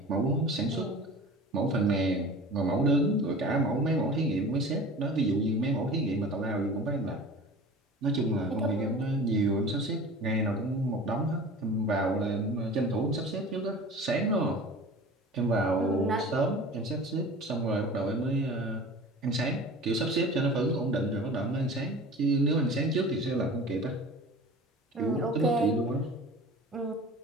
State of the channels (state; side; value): normal; both; correlation 0.39